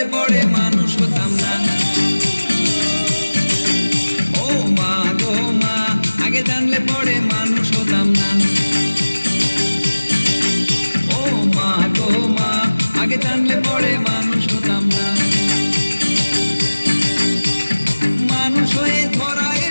পরে মানুষ হতাম না। ও মা গো মা, আগে জানলে পরে মানুষ হতাম না। ও মা গো মা, আগে জানলে পরে মানুষ হতাম না। মানুষ হয়ে ধরা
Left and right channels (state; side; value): inverted; both; correlation -1.00